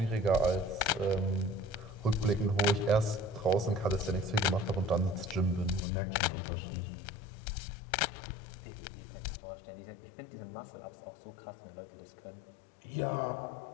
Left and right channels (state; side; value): drops out; right; at 5.8 s